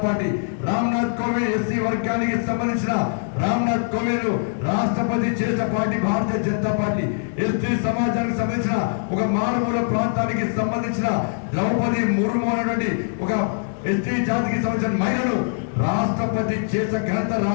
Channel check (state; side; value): silent; right; digital silence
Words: party Ramnath Kovind SC వర్గానికి సంబంధించిన రామ్నాథ్ కోవింద్ రాష్ట్రపతి చేసిన party Bharatiya Janata party ST సమాజానికి సంబంధించిన ఒక మారుమూల ప్రాంతానికి సంబంధించిన ద్రౌపది ముర్ము అనేటువంటి ఒక ఎస్టీ జాతికి సంబంధించిన మహిళను రాష్ట్రపతి చేసిన ఘనత